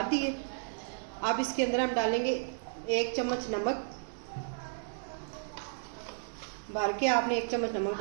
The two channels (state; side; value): silent; left; digital silence